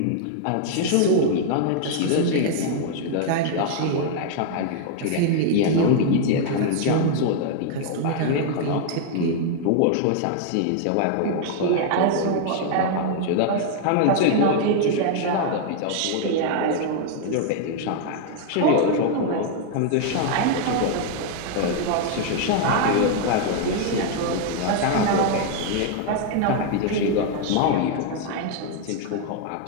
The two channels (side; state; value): both; different; correlation 0.00